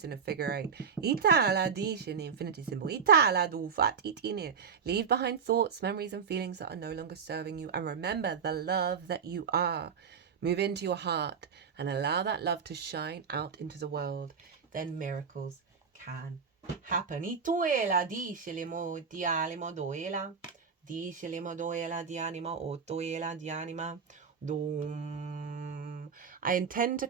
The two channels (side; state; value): left; quieter; 6.3 dB